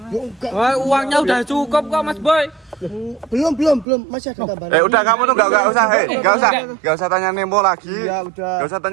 Wah, uangnya udah cukup kok Mas Boy. Belum masih ada tambahan. Udah kamu tuh enggak usah tanya Nemo lagi. Ya udah. Enggak usah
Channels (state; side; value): drops out; left; at 3.9 s